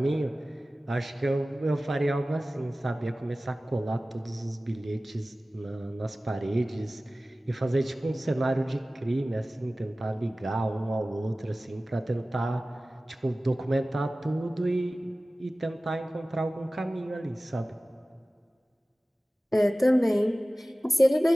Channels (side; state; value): both; normal; correlation 0.97